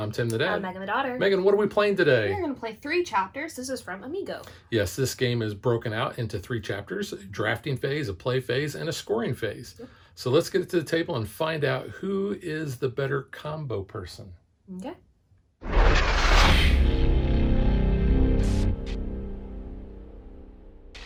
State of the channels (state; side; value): identical; both; correlation 1.00